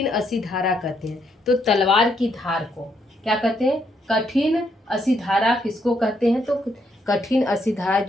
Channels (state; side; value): normal; both; correlation 0.75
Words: असिधारा कहते हैं। तो तलवार की धार को क्या कहते हैं? कठिन असिधारा किसको कहते हैं? तो कठिन असिधारा